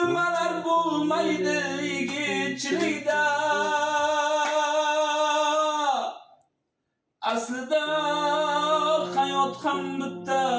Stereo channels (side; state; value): both; identical; correlation 1.00